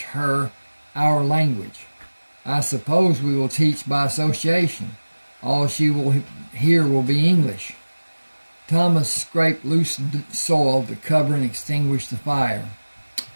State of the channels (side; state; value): both; inverted; correlation -1.00